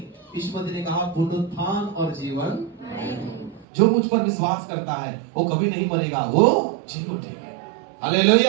यीशु मसीह ने कहा पुनरुत्थान और जीवन जो मुझ पर विश्वास करता है वो कभी नहीं मरेगा, वो जी उठेगा।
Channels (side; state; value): left; drops out; at 3.7 s